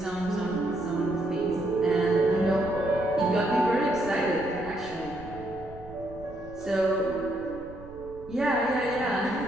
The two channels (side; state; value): right; noise; rumble, 18 dB below the sound